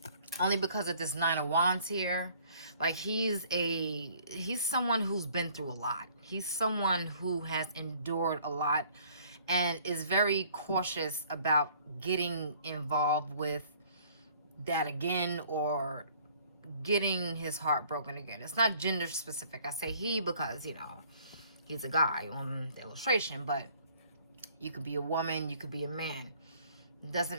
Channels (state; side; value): inverted; both; correlation -0.58